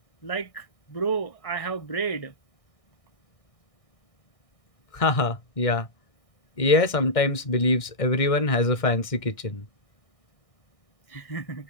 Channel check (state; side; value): late; right; 1.6 ms